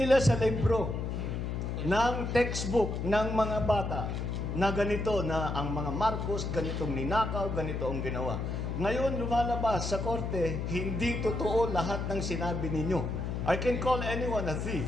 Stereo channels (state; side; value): noise; left; hum, 3 dB below the sound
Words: sa libro ng textbook ng mga bata na ganito na ang mga Marcos, ganitong ninakaw, ganito ang ginawa. Ngayon lumalabas sa korte, hindi totoo lahat ng sinabi ninyo. I can call anyone a thief,